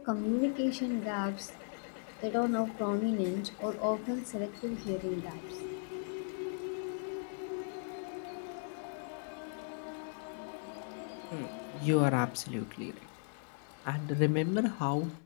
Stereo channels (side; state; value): right; silent; digital silence